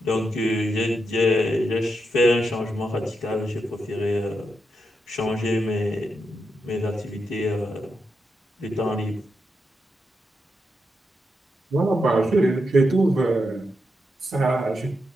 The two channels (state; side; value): normal; both; correlation 0.85